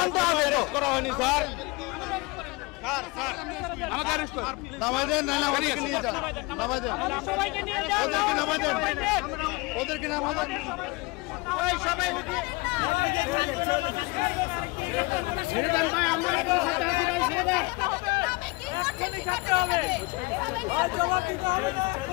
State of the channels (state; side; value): quieter; right; 25.1 dB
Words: হবে। করা হয়নি স্যার। আমাকে অ্যারেস্ট করুন, নামাই দেন। না না, ওদেরকে নিয়ে যান, নামাই দেন, সবাইকে নিয়ে যান, ওদেরকে নামাই দেন, ওদেরকে নামাই দেন। ওই সবাই ছেড়ে দেন ভাই, আমরা আপনাদের সাথে আছি ভাই, ছেড়ে দেন। আমি কি করতে কি করতে হবে? ভাই জবাব দিতে হবে,